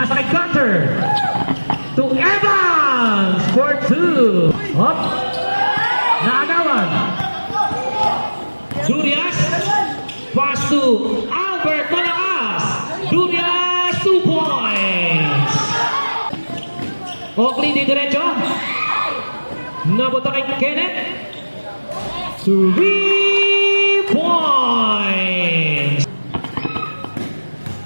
kay Gunter. To Evans for 2. Up. Naagawan. Durias. Pass to Albert Malakas. Durias, 2 points. Oakley di diretso. Nabuta kay Kenneth. 3 points.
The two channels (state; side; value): inverted; both; correlation -1.00